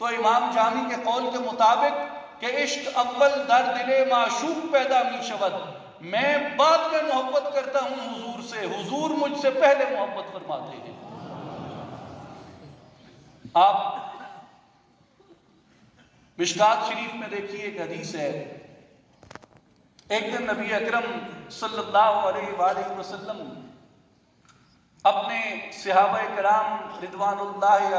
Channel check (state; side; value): identical; both; correlation 1.00